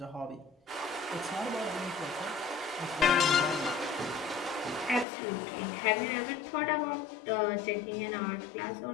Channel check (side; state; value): right; drops out; at 5.1 s